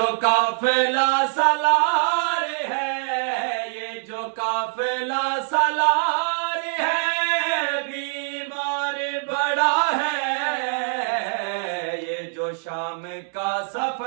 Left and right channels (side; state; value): left; silent; digital silence